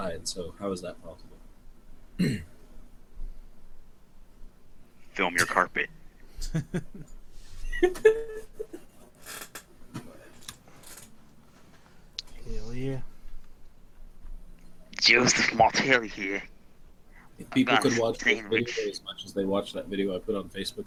so how is that possible? Film your carpet. Hell yeah. Joseph Martelli here. If people got could a watch this sandwich. video as much as they watch that video I put on Facebook,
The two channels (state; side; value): identical; both; correlation 1.00